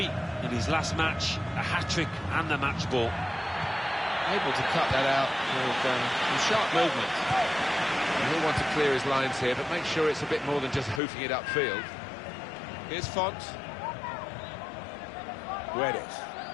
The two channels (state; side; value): drops out; right; at 11.0 s